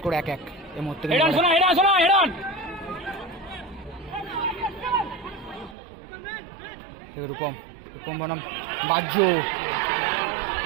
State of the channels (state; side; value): drops out; left; at 5.8 s